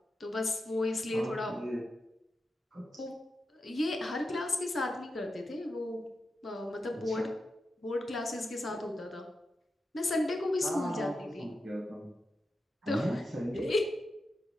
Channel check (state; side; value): normal; both; correlation 0.89